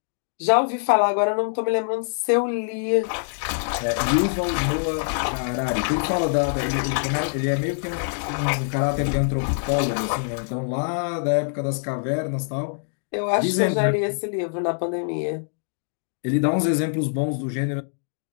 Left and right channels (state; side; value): silent; right; digital silence